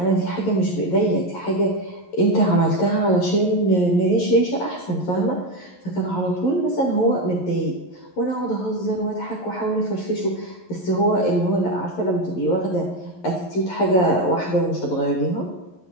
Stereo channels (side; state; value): right; late; 11 ms